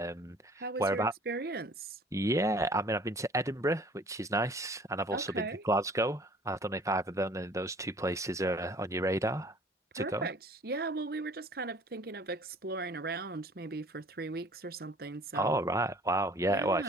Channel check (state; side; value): normal; both; correlation 0.51